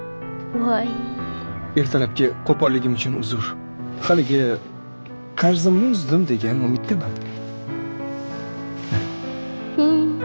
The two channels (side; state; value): both; inverted; correlation -1.00